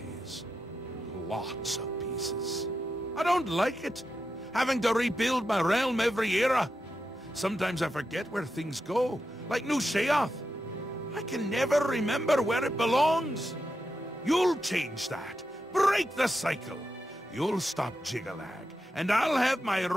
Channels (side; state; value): both; normal; correlation 0.87